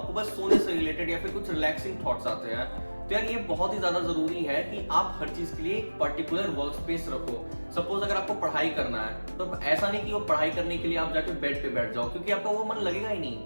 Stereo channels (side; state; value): both; inverted; correlation -1.00